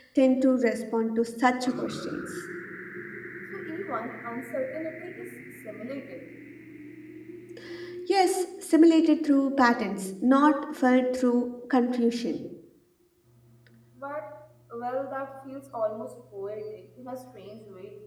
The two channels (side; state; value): both; identical; correlation 1.00